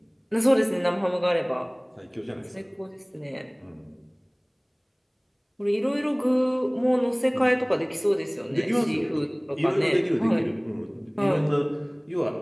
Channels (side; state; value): both; identical; correlation 1.00